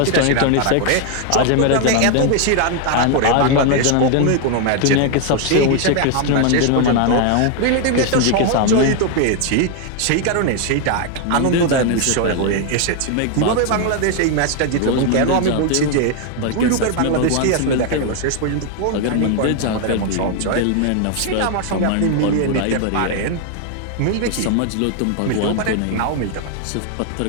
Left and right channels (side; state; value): both; different; correlation 0.01